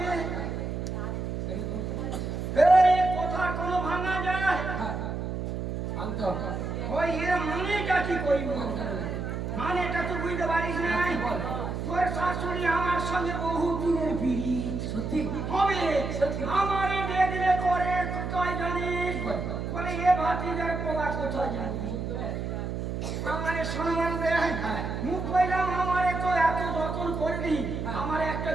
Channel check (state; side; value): noise; right; hum, 4 dB below the sound